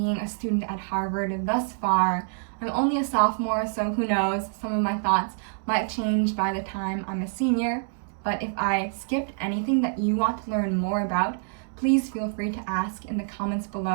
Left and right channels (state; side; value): silent; left; 61 dB below the other